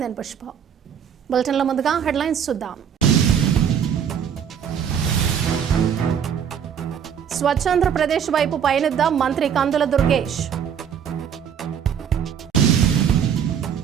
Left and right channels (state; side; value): quieter; left; 8.1 dB